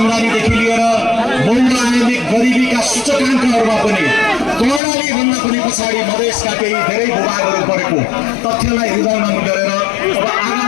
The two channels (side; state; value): right; drops out; at 4.8 s